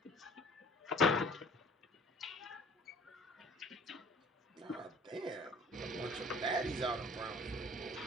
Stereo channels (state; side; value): normal; both; correlation 0.50